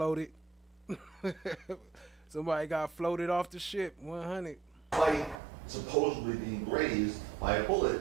Somebody got floated off the ship, 100. Despite supposedly being grazed by a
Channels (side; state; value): left; drops out; at 5.4 s